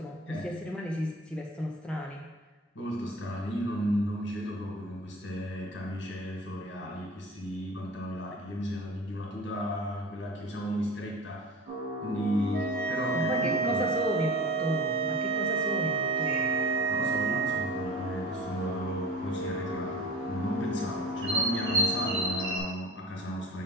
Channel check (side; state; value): both; normal; correlation 0.36